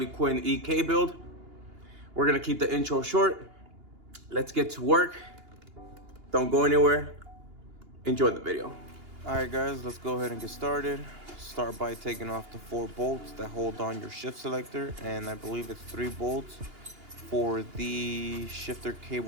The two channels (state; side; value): late; left; 2.8 ms